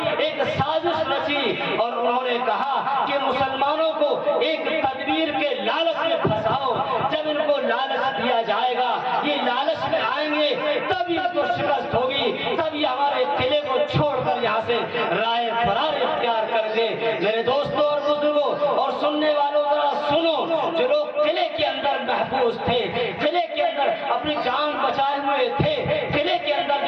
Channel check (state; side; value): identical; both; correlation 1.00